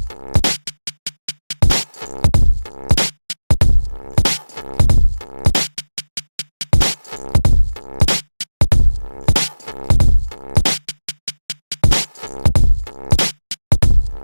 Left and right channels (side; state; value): both; inverted; correlation -1.00